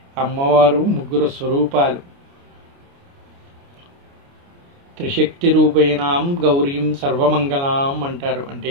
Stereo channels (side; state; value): left; late; 29 ms